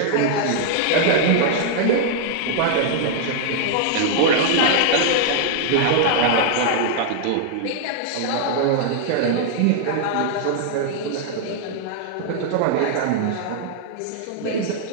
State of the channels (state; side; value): different; both; correlation -0.01